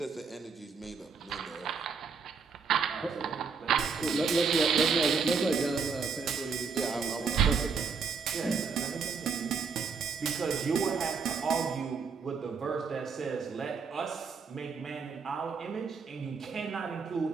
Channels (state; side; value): quieter; left; 5.3 dB